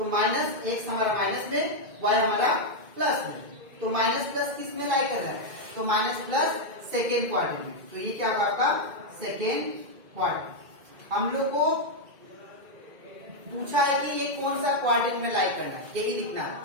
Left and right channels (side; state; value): left; late; 2.1 ms